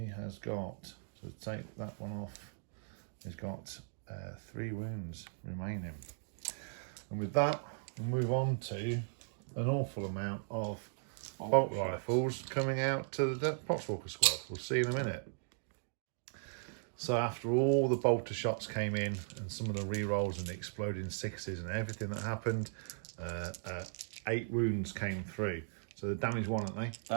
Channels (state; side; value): silent; left; digital silence